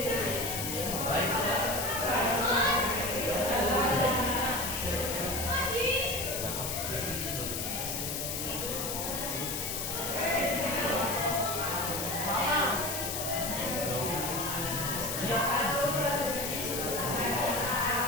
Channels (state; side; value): noise; left; hiss, 3 dB below the sound